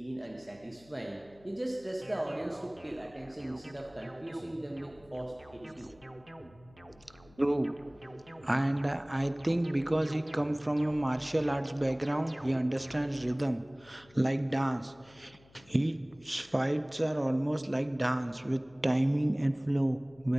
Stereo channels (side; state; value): left; noise; hum, 27 dB below the sound